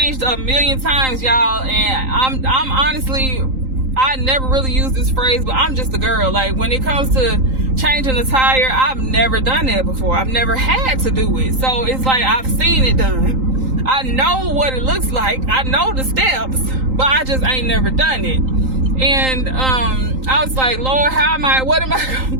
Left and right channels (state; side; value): late; left; 3.8 ms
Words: a million times, y'all, and I'm honestly, I never really use this phrase, but I'm just a girl. Like, when it comes to changing a tire, I've never done that before. I've never had to do it. So it's like, I've seen it done. I know what it looks like. I know the steps, but I just ain't never done it. And I was like, Lord, what am I gonna